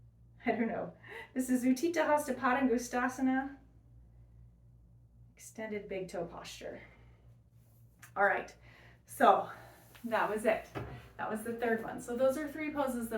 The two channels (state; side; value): identical; both; correlation 1.00